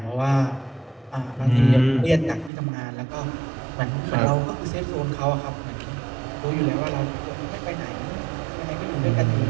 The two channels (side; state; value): left; drops out; at 2.5 s